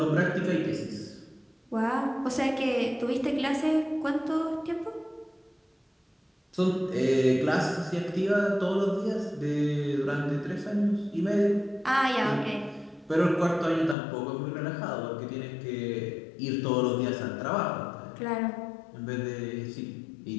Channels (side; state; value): right; drops out; at 14.0 s